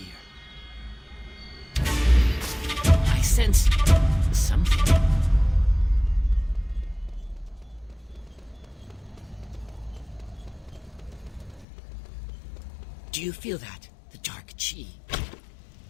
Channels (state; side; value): drops out; right; at 11.7 s